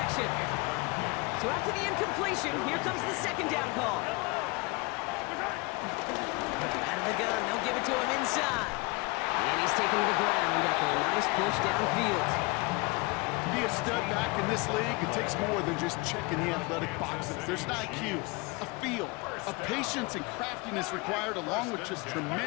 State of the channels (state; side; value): quieter; right; 26.6 dB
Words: So after the incompletion, here comes the 2nd down call. Out of the gun, they'll give it to him inside. And he's taken to the ground after a nice push downfield. To be a stud back in this league, it takes more than just checking the athletic boxes. There's an IQ, a feel, a patience and craftiness required, along with just